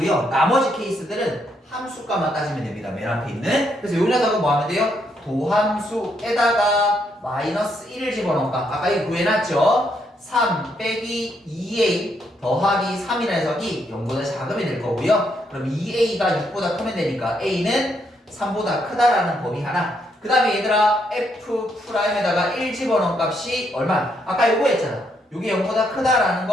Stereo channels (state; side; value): normal; both; correlation 0.75